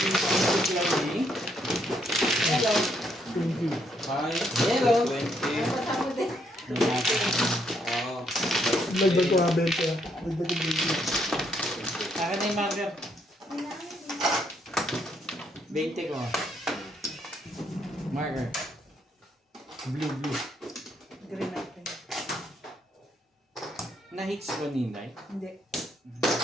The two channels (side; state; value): both; normal; correlation 0.73